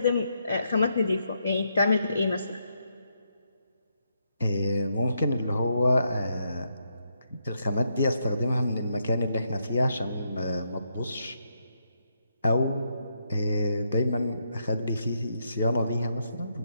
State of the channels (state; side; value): inverted; both; correlation -0.79